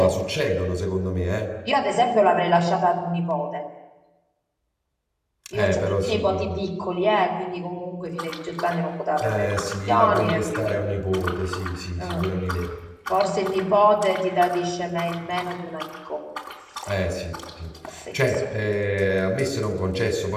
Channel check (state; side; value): identical; both; correlation 1.00